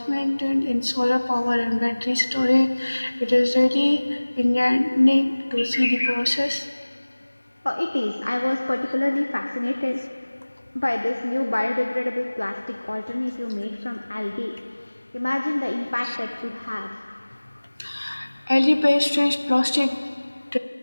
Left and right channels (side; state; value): both; inverted; correlation -1.00